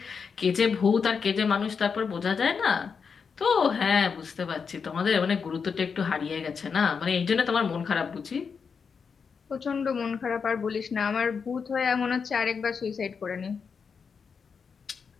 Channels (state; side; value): quieter; right; 5.9 dB